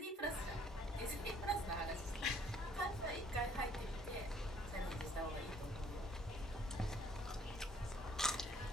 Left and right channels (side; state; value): both; normal; correlation 0.61